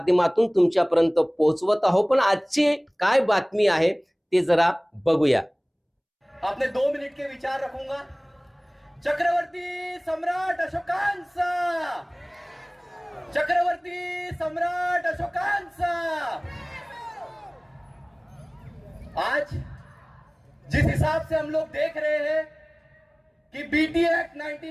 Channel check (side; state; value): both; identical; correlation 1.00